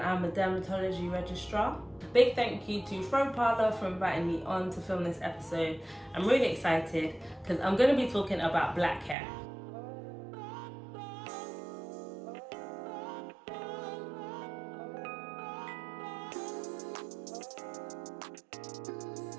I'm a dermatology registrar. Big thank you to Fro Parlour for inviting me on to film this episode. I'm really excited because I'm going to be talking about black hair.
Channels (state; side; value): drops out; left; at 9.2 s